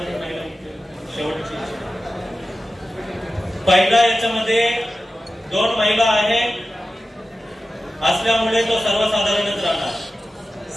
महिला शेवटची पहिला याच्यामध्ये 2 महिला आहे असल्यामुळे तो सर्वसाधारणच राहणार.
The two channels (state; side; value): normal; both; correlation 0.94